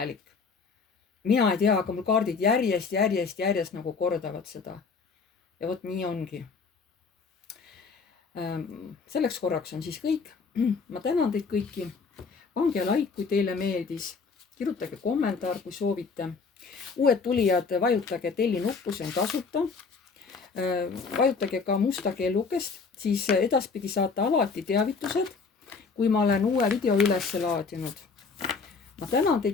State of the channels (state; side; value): quieter; right; 4.8 dB